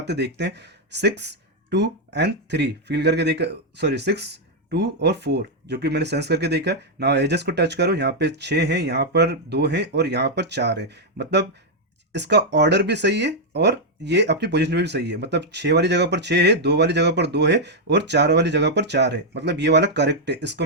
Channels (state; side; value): normal; both; correlation -0.02